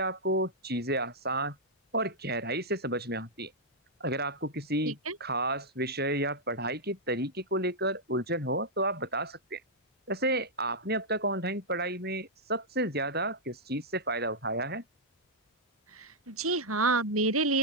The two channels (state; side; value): normal; both; correlation -0.07